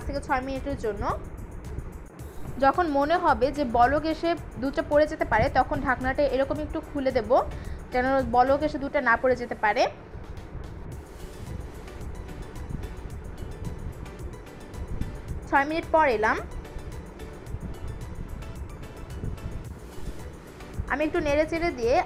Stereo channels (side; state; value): both; identical; correlation 1.00